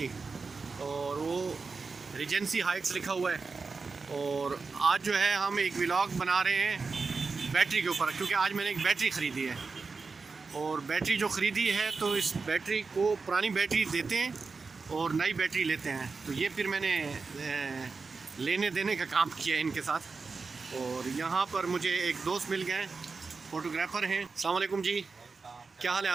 और वो रिजेंसी हाइट्स लिखा हुआ है। और आज जो है हम एक व्लॉग बना रहे हैं बैटरी के ऊपर, क्योंकि आज मैंने एक बैटरी ख़रीदी है। और बैटरी जो ख़रीदी है तो इस बैटरी को पुरानी बैटरी देते हैं और नई बैटरी लेते हैं, तो ये फिर मैंने लेने देने का काम किया है इनके साथ। और यहाँ पर मुझे एक दोस्त मिल गए, फ़ोटोग्राफ़र हैं। अस्सलाम वालेकुम जी, क्या हाल है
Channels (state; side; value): quieter; left; 4.5 dB